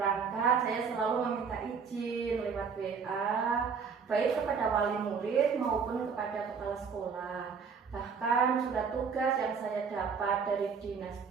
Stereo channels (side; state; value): left; quieter; 5.9 dB